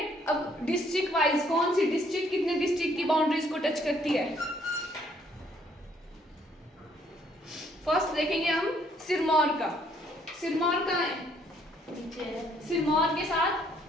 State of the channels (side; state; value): both; normal; correlation 0.66